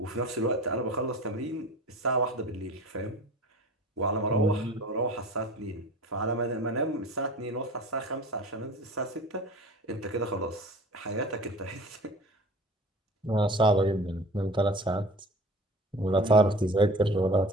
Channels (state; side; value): normal; both; correlation 0.41